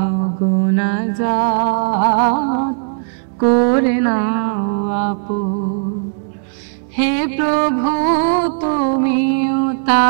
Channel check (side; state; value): left; silent; digital silence